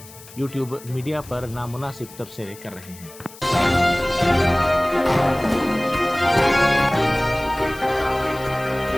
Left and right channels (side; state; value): left; noise; hiss, 19 dB below the sound